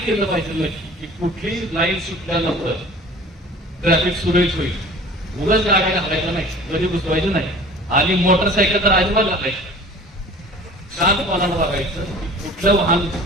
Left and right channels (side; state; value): both; normal; correlation 0.44